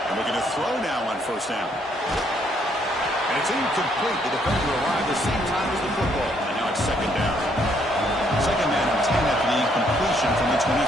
Looking to throw now on first down. And it's incomplete. The defender arrived the same time as the football. And now it's second down. Second man and 10 after the incompletion from the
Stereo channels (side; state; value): both; normal; correlation 0.69